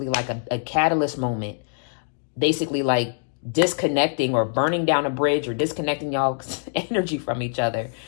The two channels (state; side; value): silent; right; digital silence